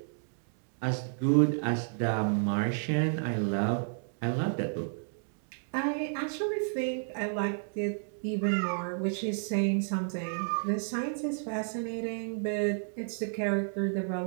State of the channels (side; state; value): left; silent; digital silence